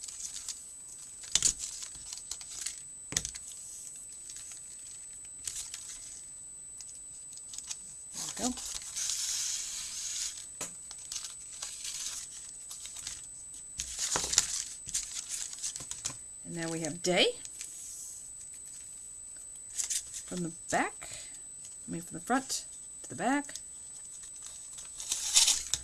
There we go. Now we have day from the back, from the front to the back,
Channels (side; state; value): both; identical; correlation 1.00